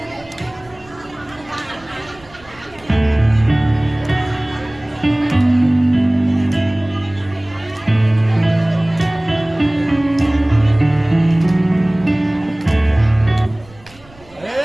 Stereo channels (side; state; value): right; noise; rumble, 25 dB below the sound